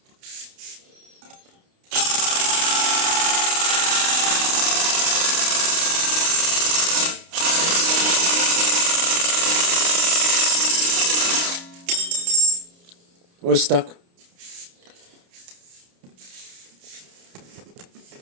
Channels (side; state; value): left; late; 29 ms